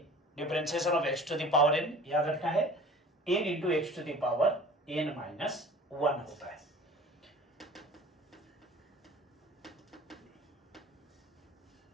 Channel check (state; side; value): normal; both; correlation 0.45